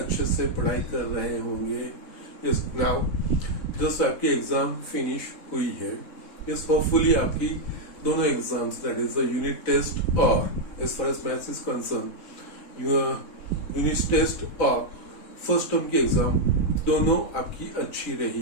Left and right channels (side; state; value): right; late; 3.9 ms